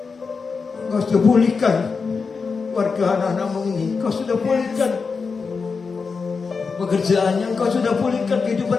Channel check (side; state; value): right; quieter; 5.0 dB